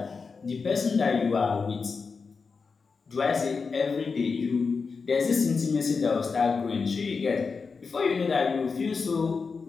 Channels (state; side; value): quieter; right; 4.9 dB